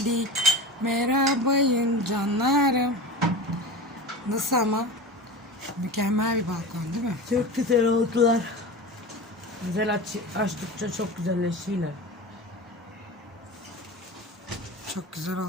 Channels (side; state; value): both; normal; correlation 0.30